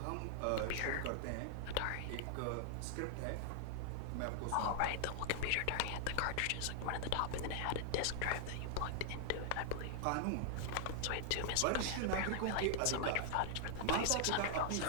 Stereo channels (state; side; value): different; both; correlation 0.00